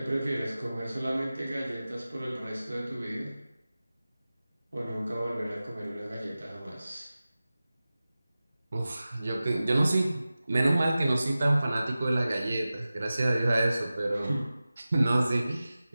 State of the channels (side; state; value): both; inverted; correlation -0.96